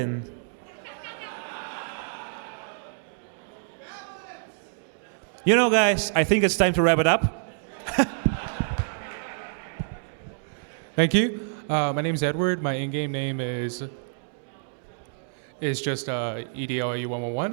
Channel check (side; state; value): left; silent; digital silence